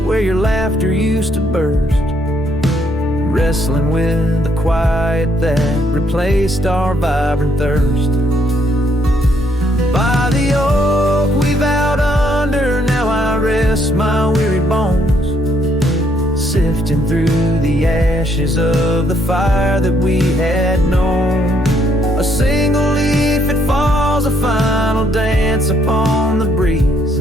where your laughter used to burst, wrestling with the quiet that replaced our vibrant thirst. By the oak we vowed under, now I rest my weary bones, sifting through the ashes of the fire that we had known. A single leaf, it falls, a final dance upon the breeze,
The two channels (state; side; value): normal; both; correlation 0.71